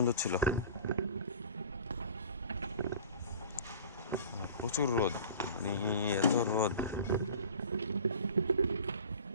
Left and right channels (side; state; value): both; inverted; correlation -0.42